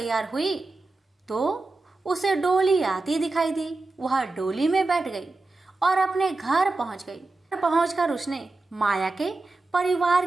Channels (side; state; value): left; quieter; 3.3 dB